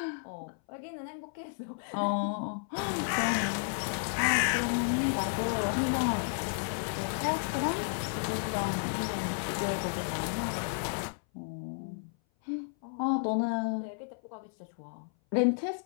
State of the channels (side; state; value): right; silent; 56 dB below the other